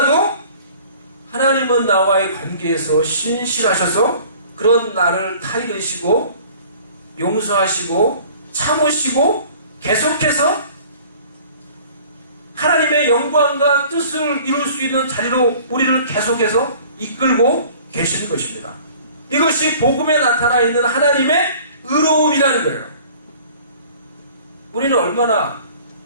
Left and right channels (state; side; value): inverted; both; correlation -0.49